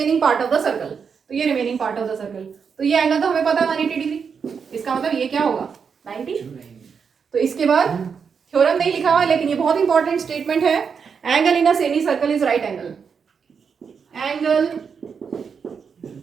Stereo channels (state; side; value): quieter; left; 6.2 dB